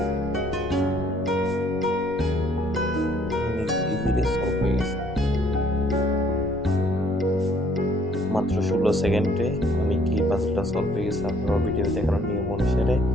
ইজিলি সলভ হয়ে গেছে। মাত্র 16 সেকেন্ডে আমি কি পাজলটা সলভ হয়ে গেছে। আপনারা ভিডিও দেখার নিয়ম অনুসারে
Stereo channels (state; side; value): normal; both; correlation 0.62